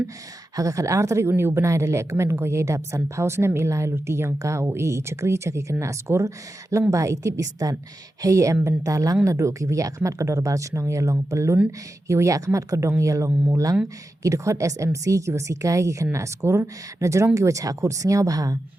haga khat arteri uni ubenai de lekmen ko yedap san pausnem ilai luti yang ka o e chakri chaki kena skor lengba itip istan hey em bentalang nado ki wiya khmat kador bar chnong yalong pelun ki wiya khmat kadong yalong mulang ki dekhot SMC ki wasikai ki kena skor na jorong ki wacha khut singyaw baha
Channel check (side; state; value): both; normal; correlation 0.91